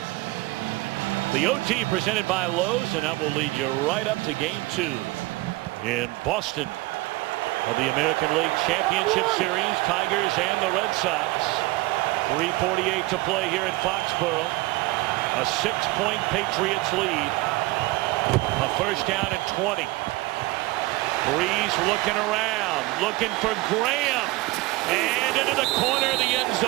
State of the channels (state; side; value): quieter; left; 21.2 dB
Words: The OT presented by Lowe's, and that will lead you right up to Game 2 in Boston of the American League Championship Series. Tigers and the Red Sox. 3:48 to play here in Foxborough. A 6-point Patriots lead. A first down and 20. Breeze looking around, looking for Graham, and into the corner of the end